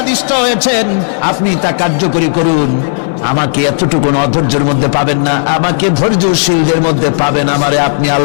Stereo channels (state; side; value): silent; right; digital silence